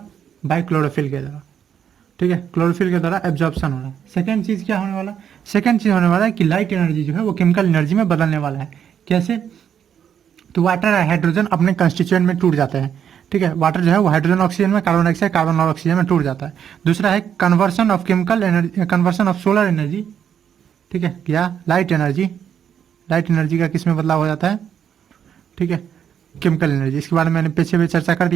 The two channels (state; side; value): quieter; left; 8.6 dB